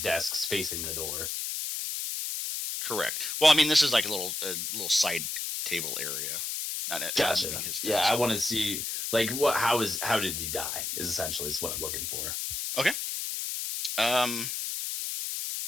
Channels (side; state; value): left; noise; hiss, 3 dB below the sound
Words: desks facing the door. Correct. Well, I mean, this is like a little side table area. Not Gotcha. his desk. Yeah, I want to see like how did he die? Is essentially what I'm looking for. Okay.